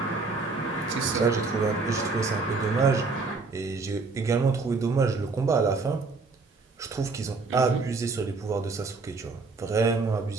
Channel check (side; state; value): left; quieter; 4.1 dB